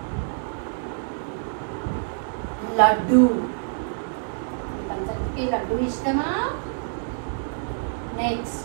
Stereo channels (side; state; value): left; silent; digital silence